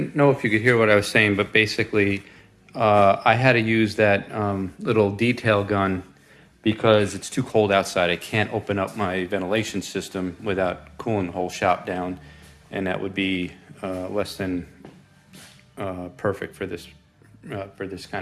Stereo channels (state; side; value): identical; both; correlation 1.00